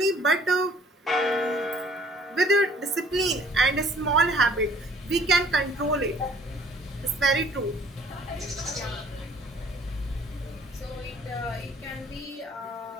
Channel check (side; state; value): both; normal; correlation 0.57